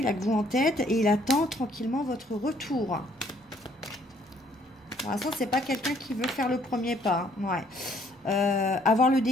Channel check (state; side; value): normal; both; correlation 0.64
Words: a que vous en tête et il attend tranquillement votre retour. Pour l'instant, c'est pas quelqu'un qui veut faire le premier pas. Hein. Ouais. Avoir le